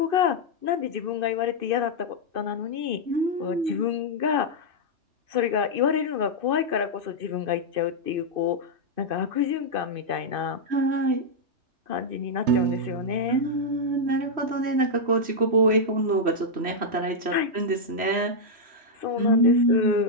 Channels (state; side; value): late; left; 3.0 ms